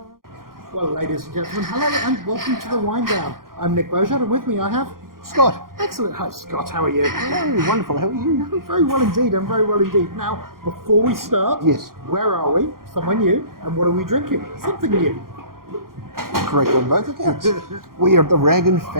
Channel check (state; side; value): late; left; 0.92 ms